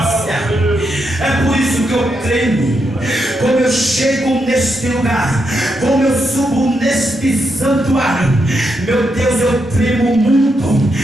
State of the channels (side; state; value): both; normal; correlation 0.82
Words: É por isso que eu tremo. Como eu chego neste lugar, como eu subo neste santuário, meu Deus, eu tremo muito,